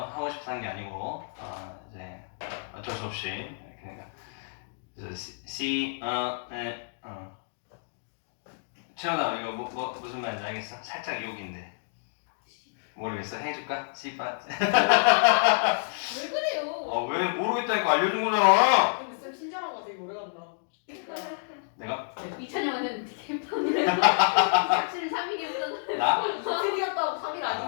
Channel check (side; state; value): right; silent; digital silence